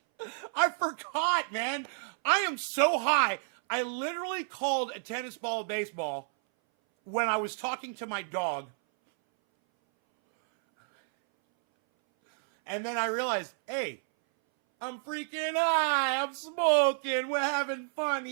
I forgot, man. I am so high. I literally called a tennis ball a baseball when I was talking to my dog. And then I realized, hey, I'm freaking high. I'm smoking. We're having fun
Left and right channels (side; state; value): left; silent; 58 dB below the other